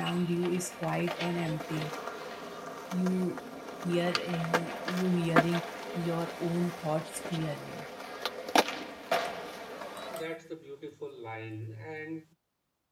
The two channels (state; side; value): identical; both; correlation 1.00